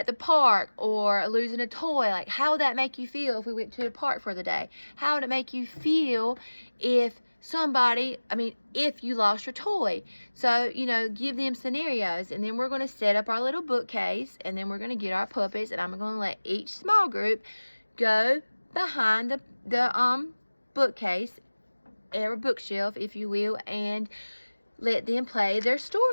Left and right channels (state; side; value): inverted; both; correlation -1.00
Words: the park, or losing a toy. How would that make you feel if we went to the park for the day? How would it make you feel if if you lost your toy? So, give them scenarios, and then we're going to set up our little bookcase, and then we're going to get our puppets, and I'm going to let each small group go behind the bookcase, or bookshelf, if you will, and let them play their